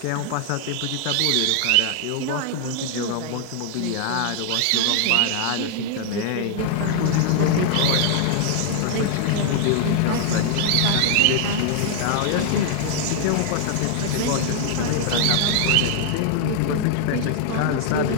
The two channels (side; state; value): both; different; correlation 0.00